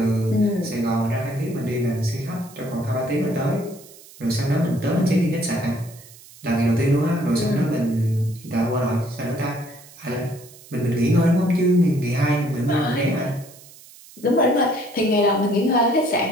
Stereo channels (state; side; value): noise; right; hiss, 21 dB below the sound